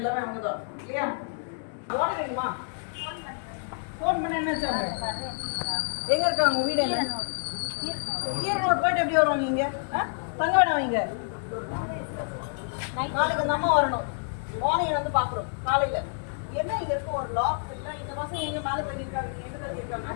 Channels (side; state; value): right; silent; digital silence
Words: அவங்க தான் இல்லையா? வார்டன் வேணுமா? ஃபோன் பண்ண என்ன வச்சாங்க? எங்க இருக்காங்க? வீடு என்ன? ஈரோடு போயிட்டு எப்படி வருவாங்க? இங்க தங்க வேணாம். இங்க நாளைக்கு அந்த அம்மா வரணும். மார்னிங் வந்து பாக்குறோம் காலையில. என்ன இங்க இருக்க ஒரு லாக் இல்ல. இந்த மாசம் எங்க மேல தள்ளி இருக்காங்க? எங்க தள்ளி இருக்காங்க?